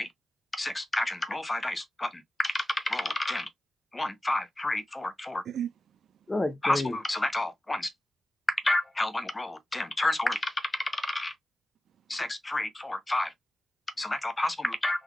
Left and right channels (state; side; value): normal; both; correlation 0.95